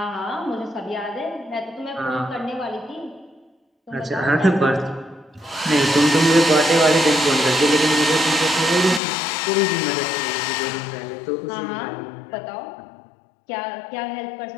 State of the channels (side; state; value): right; drops out; at 9.0 s